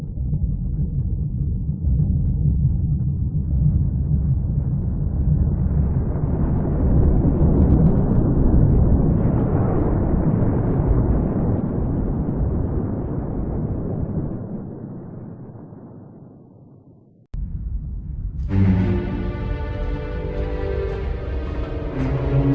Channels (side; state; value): both; identical; correlation 1.00